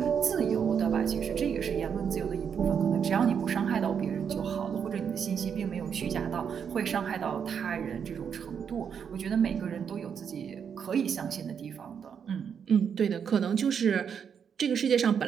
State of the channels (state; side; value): quieter; left; 7.3 dB